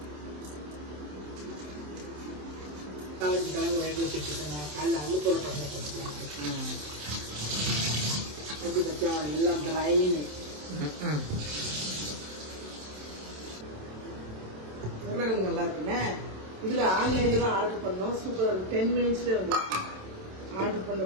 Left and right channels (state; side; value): late; left; 27 ms